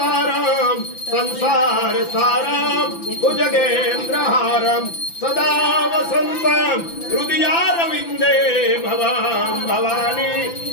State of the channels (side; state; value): right; late; 5.9 ms